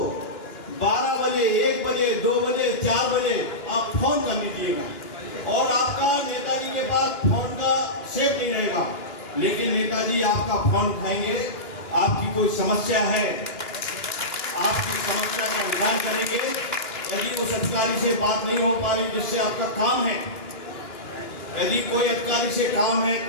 12 बजे, 1 बजे, 2 बजे, 4 बजे आप फोन कर लीजिएगा और आपका नेताजी के पास फोन का सेव नहीं रहेगा, लेकिन नेताजी आपका फोन उठाएंगे। आपकी कोई समस्या है, आपकी समस्या का निदान करेंगे। यदि उस अधिकारी से बात नहीं हो पा रही जिससे आपका काम है, यदि कोई अधिकारी से काम है,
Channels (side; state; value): right; late; 2.9 ms